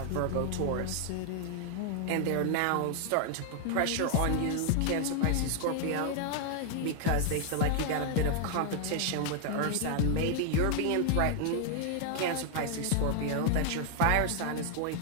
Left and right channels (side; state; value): both; different; correlation 0.00